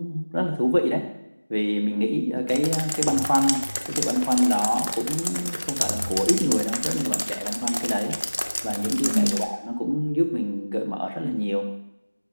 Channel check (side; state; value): both; inverted; correlation -1.00